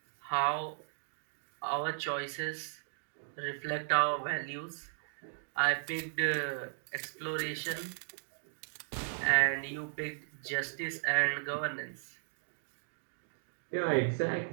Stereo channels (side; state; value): left; silent; digital silence